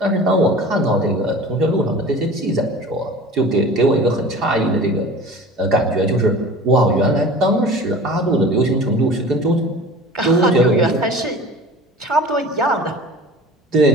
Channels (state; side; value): normal; both; correlation 0.40